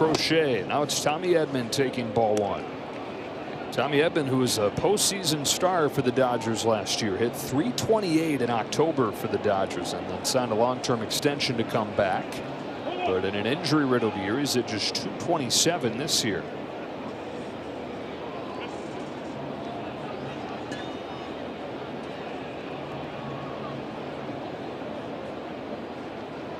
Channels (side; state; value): both; identical; correlation 1.00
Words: Now it's Tommy Edman taking ball 1. Tommy Edman, who was a postseason star for the Dodgers last year, hit .328 in October for the Dodgers and then signed a long-term extension to come back. But in an injury-riddled year, he's at just .227 this year.